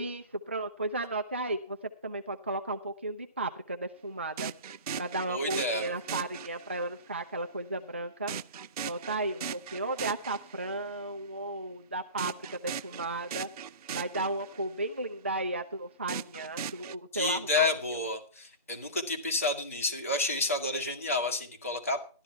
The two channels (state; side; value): inverted; both; correlation -0.30